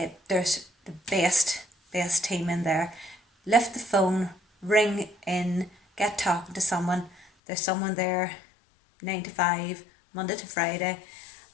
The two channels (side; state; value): right; drops out; at 7.2 s